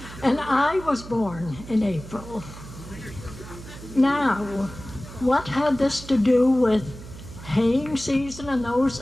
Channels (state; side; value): noise; right; hum, 14 dB below the sound